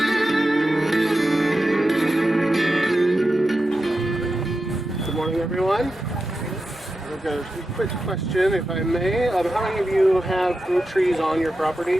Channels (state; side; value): normal; both; correlation 0.90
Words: morning, everyone. I've got a quick question, if I may. How many of you have fruit trees on your